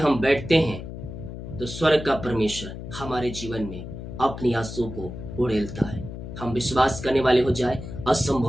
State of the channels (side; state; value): left; noise; hum, 10 dB below the sound